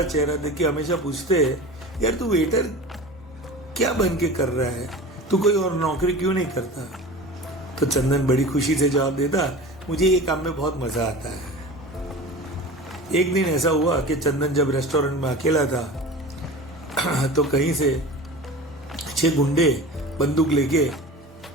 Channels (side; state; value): both; normal; correlation 0.35